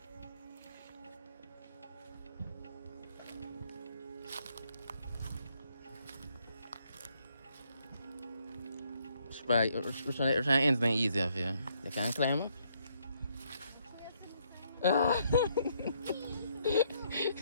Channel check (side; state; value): both; inverted; correlation -0.72